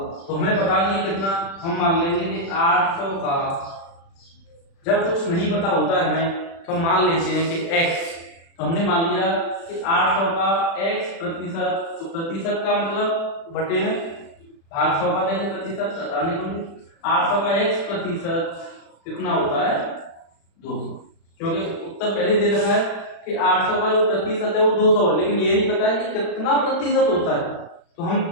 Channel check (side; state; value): right; late; 36 ms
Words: तो हमें पता नहीं कितना, हम मान लेंगे कि 800 का, जब कुछ नहीं पता होता है हमें तो हम मान लेते हैं कि x, तो हमने मान लिया कि 800 का x प्रतिशत, तो प्रतिशत का मतलब बटे में भाग 100 का देंगे प्रतिशत, हटाने को 800 का x प्रतिशत कितना होता है 200, क्योंकि उत्तर पहले दे रखा है कि 800 का जो प्रतिशत है वो 200 है, लेकिन ये नहीं पता है कि कितना प्रतिशत होता है। तो हम